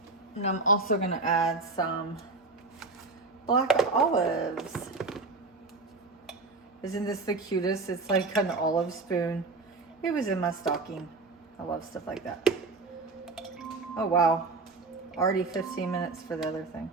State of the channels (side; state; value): left; quieter; 3.7 dB